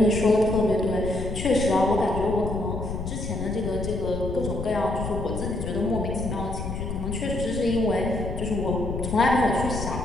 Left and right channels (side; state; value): left; noise; rumble, 5 dB below the sound